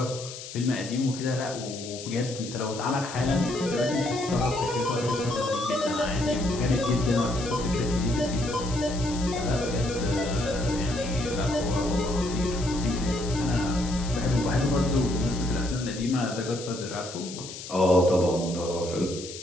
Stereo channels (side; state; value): left; noise; hiss, 11 dB below the sound